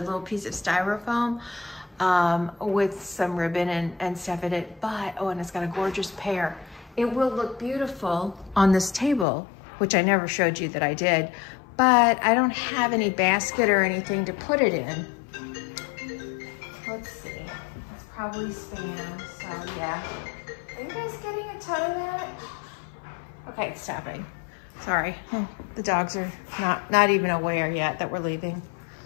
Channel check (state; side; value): drops out; right; at 9.2 s